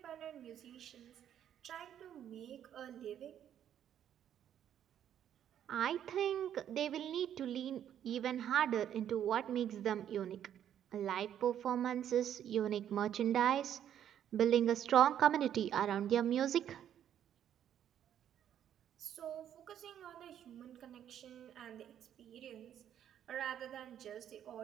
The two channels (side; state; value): left; quieter; 10.0 dB